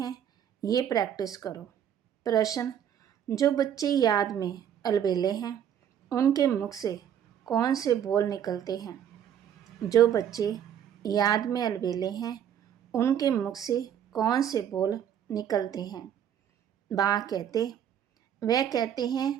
ये प्रैक्टिस करो। प्रश्न: जो बच्चे याद में अलबेले हैं, उनके मुख से कौन से बोल निकलते हैं? जो बच्चे याद में अलबेले हैं, उनके मुख से कौन से बोल निकलते हैं? बाबा कहते, वह कहते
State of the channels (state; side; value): quieter; left; 9.5 dB